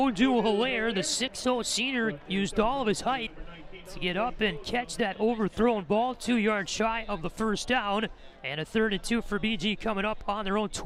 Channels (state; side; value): identical; both; correlation 1.00